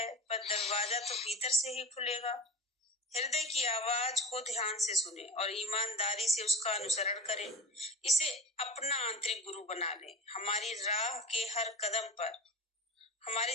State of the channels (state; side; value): normal; both; correlation 0.32